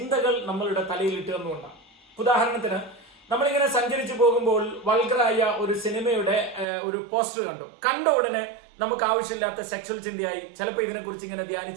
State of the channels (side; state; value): left; drops out; at 6.7 s